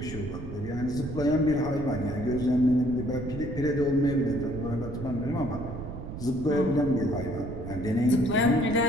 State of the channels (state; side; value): noise; right; rumble, 9 dB below the sound